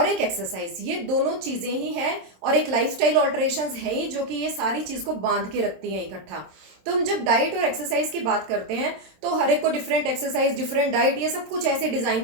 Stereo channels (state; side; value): late; left; 27 ms